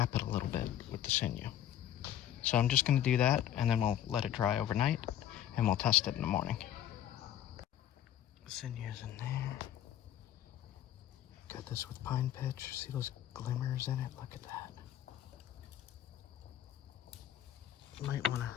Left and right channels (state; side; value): quieter; right; 11.2 dB